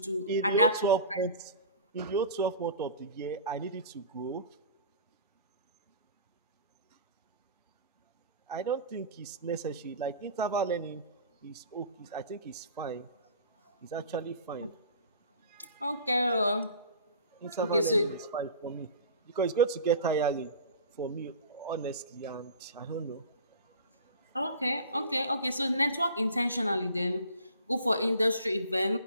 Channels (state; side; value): inverted; both; correlation -0.41